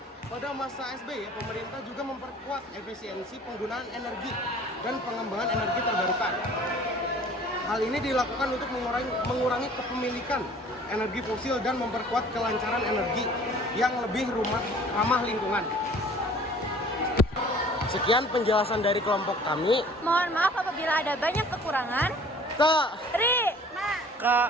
Pada masa SBY, pemerintah juga memperkuat efisiensi penggunaan energi dan pengembangan energi terbarukan. Hal ini dilakukan untuk mengurangi kepemilikan energi fosil dan memperkuat kelancaran energi yang lebih ramah lingkungan. Sekian penjelasan dari kelompok kami. Mohon maaf apabila ada banyak kekurangan. Terima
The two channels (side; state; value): both; normal; correlation 0.50